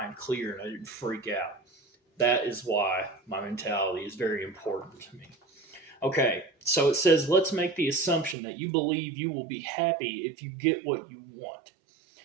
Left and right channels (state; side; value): drops out; left; at 8.3 s